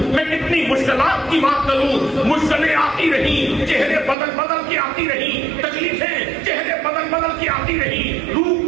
میں کتنی مشکلات کی بات کروں. مشکلیں آتی رہی، چہرے بدل بدل کے آتی رہی، تکلیفیں چہرے بدل بدل کے آتی رہی، روح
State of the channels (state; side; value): drops out; left; at 4.2 s